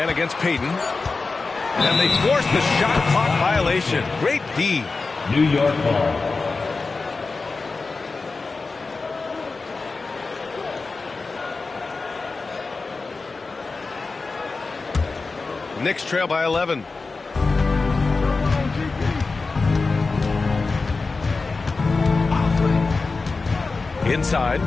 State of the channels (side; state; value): right; quieter; 4.0 dB